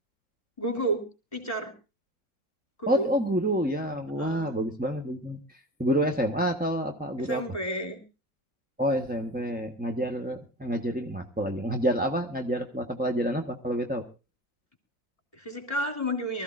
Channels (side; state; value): both; normal; correlation 0.33